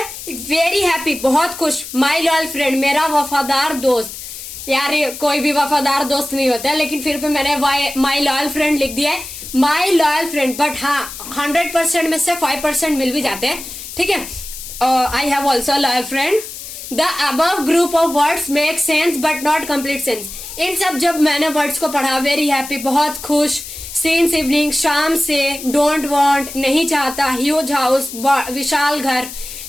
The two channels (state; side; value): noise; left; hiss, 11 dB below the sound